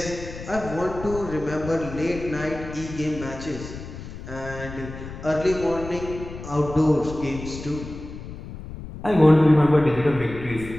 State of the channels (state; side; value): noise; left; rumble, 11 dB below the sound